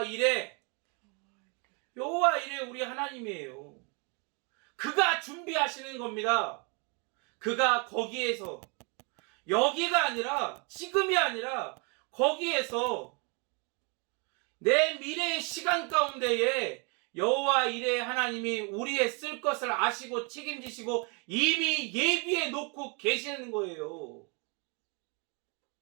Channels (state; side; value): quieter; left; 34.0 dB